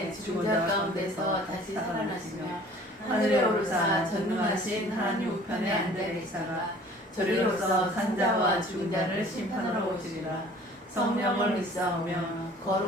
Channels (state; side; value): normal; both; correlation 0.50